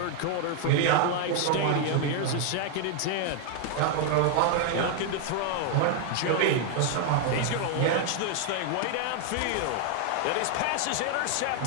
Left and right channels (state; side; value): different; both; correlation 0.00